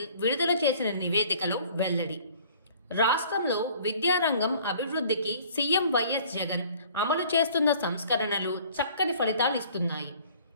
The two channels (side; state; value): both; inverted; correlation -0.53